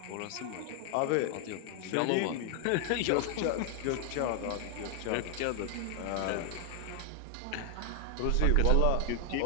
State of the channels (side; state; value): both; different; correlation 0.00